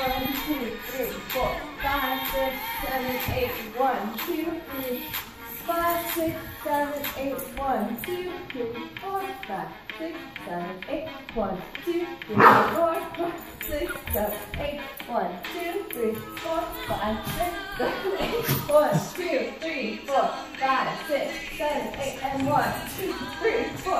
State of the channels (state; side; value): identical; both; correlation 1.00